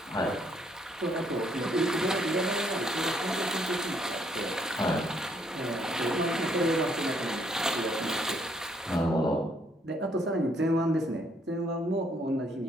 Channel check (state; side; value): normal; both; correlation 0.69